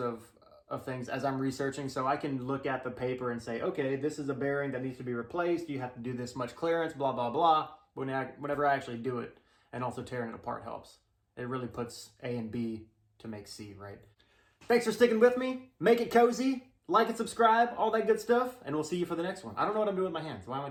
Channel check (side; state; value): both; identical; correlation 1.00